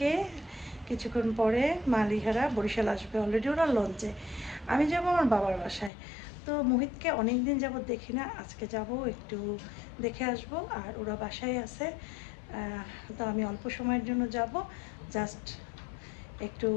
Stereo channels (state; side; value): drops out; right; at 5.9 s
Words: কিছুক্ষণ পরে মালিহারা বরিশাল আসবে, অলরেডি ওরা লঞ্চে। আমি যাব আমার বাবার বাসায়। তো মোহিতকে অনেক দিন যাবত দেখি না, আজকে যাব একটু দেখে আসব। আর ওরা বাসায় আছে, তো আমি অল্প সময়ের জন্য যাব, জাস্ট একটু